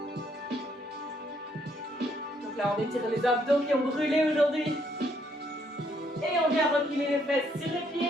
Donc là, on étire les abdos qui ont brûlé aujourd'hui. Et on vient replier les fesses sur les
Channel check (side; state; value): both; normal; correlation 0.70